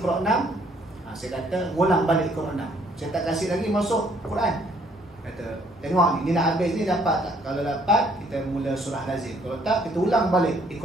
6, saya kata ulang balik Iqra 6. Saya tak kasih lagi masuk Quran. Kata, tengok ni nak habis ni dapat tak? Kalau dapat, kita mula surah lazim. Kalau tak, kita ulang balik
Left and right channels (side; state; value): both; normal; correlation 0.65